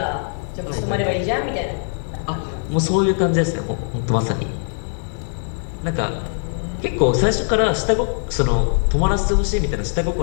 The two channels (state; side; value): silent; right; digital silence